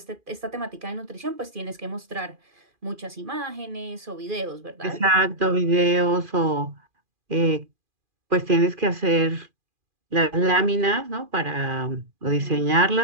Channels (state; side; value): late; left; 2.4 ms